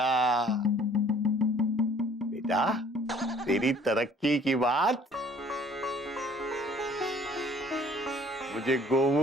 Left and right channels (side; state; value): both; normal; correlation 0.55